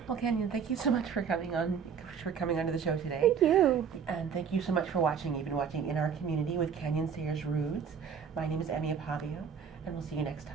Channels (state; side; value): quieter; left; 6.8 dB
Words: Well, Kanyon, thank you so much for coming onto the show today. Thank you. And thank you so much for watching. You've been watching In Our Community with Kanyon Sayers-Roods. My name is Akpabio, and we'll see you next